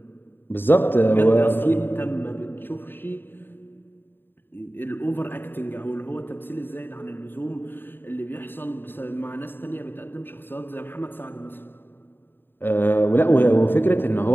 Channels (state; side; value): late; right; 0.098 ms